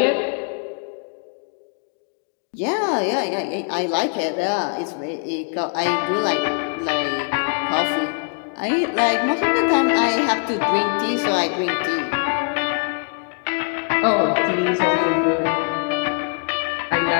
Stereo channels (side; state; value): right; quieter; 35.3 dB